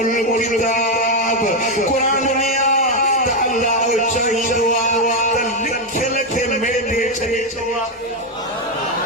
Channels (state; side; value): normal; both; correlation 0.05